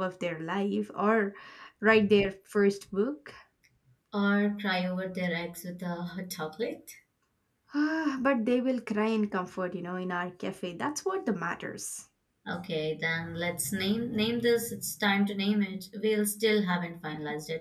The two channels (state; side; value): identical; both; correlation 1.00